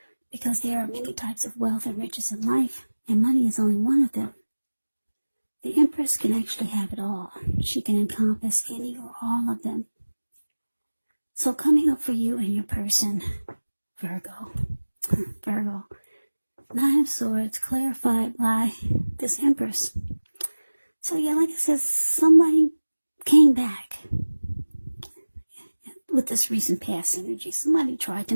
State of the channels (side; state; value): both; inverted; correlation -1.00